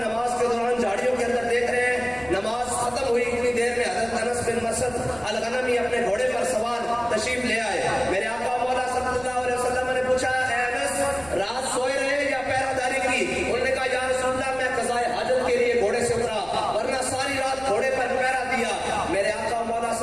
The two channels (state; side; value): noise; right; rumble, 21 dB below the sound